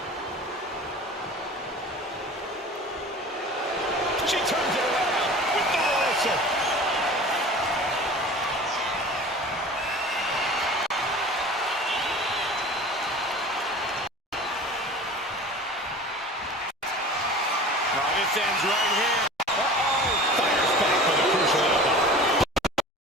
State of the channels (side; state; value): both; normal; correlation 0.39